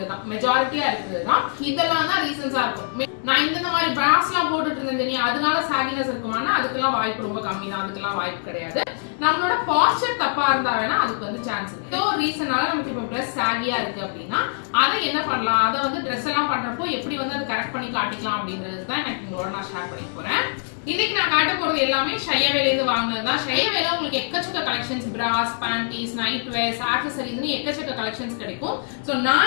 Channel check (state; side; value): silent; right; digital silence